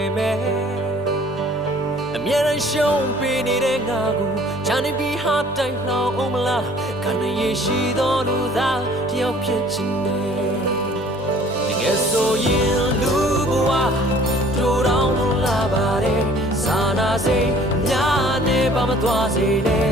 မဲ့အမြဲတမ်းရှုံးပေးနေတဲ့ငါကိုချမ်းနေပြီးဟာတိုင်းလောင်အောင်မလားခန္ဓာရရှိသောလူသားတယောက်ဖြစ်ချင်တယ်တကယ်ဆိုရင်လူဘဝတို့တောင်လာပါတယ်စာနာစိတ်များနေပါမသွားစေနဲ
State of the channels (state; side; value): normal; both; correlation 0.53